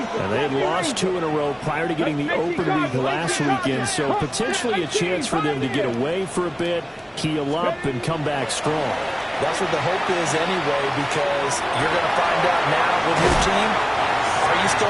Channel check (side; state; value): both; identical; correlation 1.00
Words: And they had lost 2 in a row prior to getting the open week last weekend, so potentially a chance for them to get away for a bit, keel up, and come back strong. That's what the hope is anyway, because you're going to find out now with your team, are you